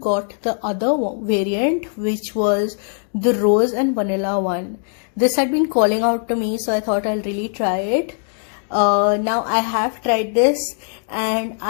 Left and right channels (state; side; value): silent; right; 56 dB below the other